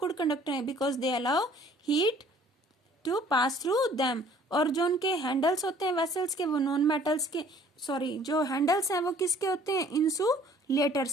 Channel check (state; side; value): normal; both; correlation 0.55